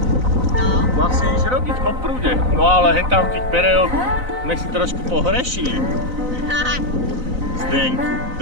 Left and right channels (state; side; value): late; left; 4.0 ms